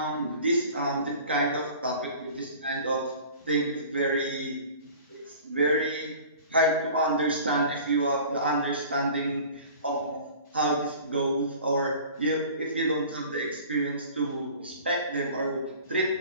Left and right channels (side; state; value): both; inverted; correlation -0.44